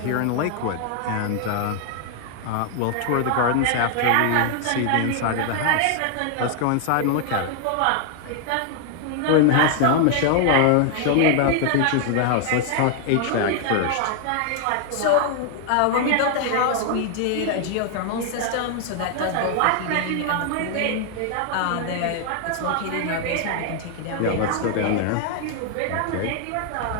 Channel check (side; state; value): both; different; correlation 0.00